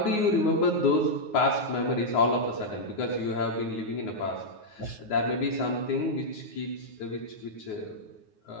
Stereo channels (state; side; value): late; right; 9.5 ms